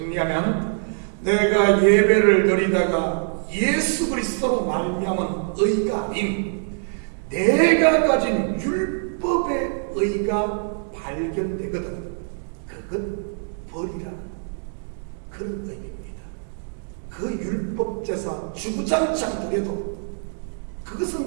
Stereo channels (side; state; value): left; silent; 63 dB below the other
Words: 내가 예배를 드리다가 예수 그리스도로 말미암은 의가 아닌 내가 가진 율법의 의가 발견되거든 그것 버리라 그런 의미입니다. 그 율법 제사 주구장창 드려도